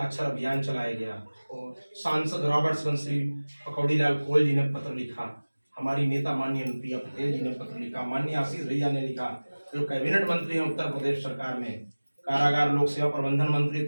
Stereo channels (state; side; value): inverted; both; correlation -1.00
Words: अभियान चलाया गया और सांसद रॉबर्ट्सगंज श्री पकौड़ी लाल कोयल जी ने पत्र लिखा, हमारी नेता माननीय अनुप्रिया पटेल जी ने पत्र लिखा, माननीय आशीष भैया ने लिखा, जो कैबिनेट मंत्री हैं उत्तर प्रदेश सरकार में, कारागार लोक सेवा प्रबंधन मंत्री